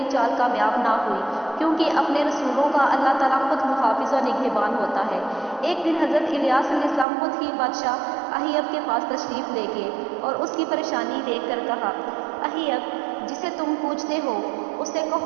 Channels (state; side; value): drops out; left; at 7.1 s